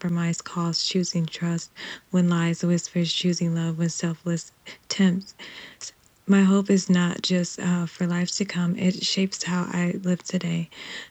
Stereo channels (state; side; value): identical; both; correlation 1.00